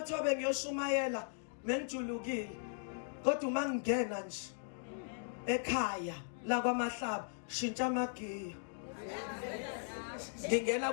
bengiyoshumayela mengijulukile kodwa uma ngingena nje ekhaya la kwaMahlaba shintsha amagiya ngingena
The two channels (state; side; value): silent; right; digital silence